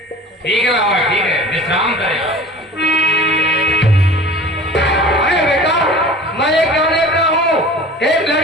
ठीक है बाबा, ठीक है, विश्राम करें। अरे बेटा, मैं ये क्या देख रहा हूँ, एक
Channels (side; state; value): both; normal; correlation 0.41